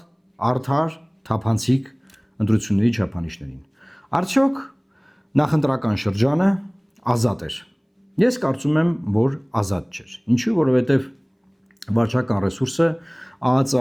արդար, թափանցիկ ընտրությունների չափանիշներին։ Արդյոք նախընտրական շրջանը ազատ էր։ Ես կարծում եմ, որ ազատ չէր։ Ինչու՞, որովհետև վարչական ռեսուրսը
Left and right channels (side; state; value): both; identical; correlation 1.00